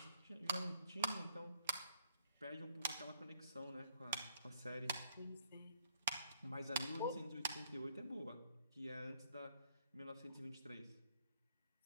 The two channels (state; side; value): inverted; both; correlation -0.69